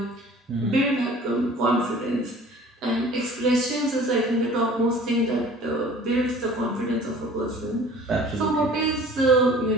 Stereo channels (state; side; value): normal; both; correlation 0.47